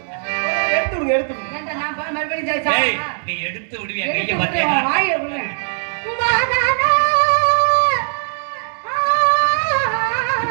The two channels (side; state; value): left; silent; digital silence